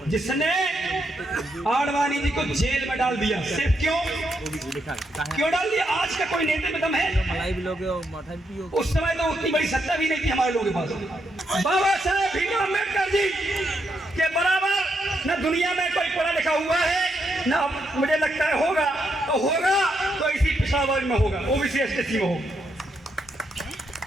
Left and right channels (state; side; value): normal; both; correlation 0.80